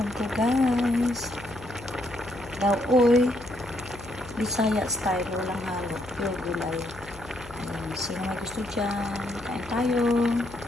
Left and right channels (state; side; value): noise; left; hum, 17 dB below the sound